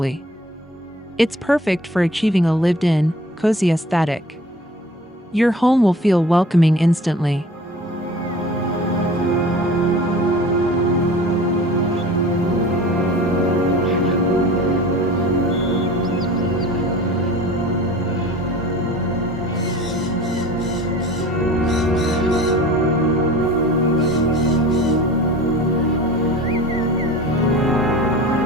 It's perfect for achieving a lived-in, cozy aesthetic. Your home will feel welcoming instantly.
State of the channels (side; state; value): both; normal; correlation 0.42